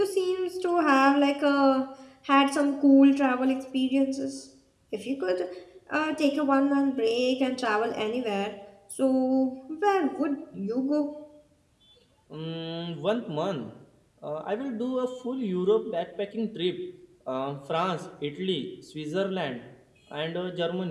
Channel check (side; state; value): both; identical; correlation 1.00